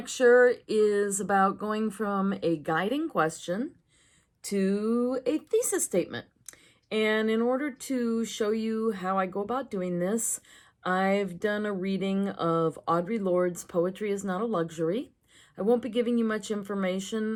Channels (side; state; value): both; identical; correlation 1.00